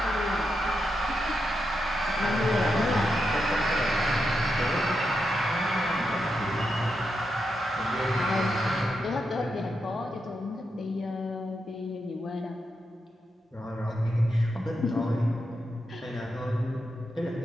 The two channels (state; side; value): normal; both; correlation 0.85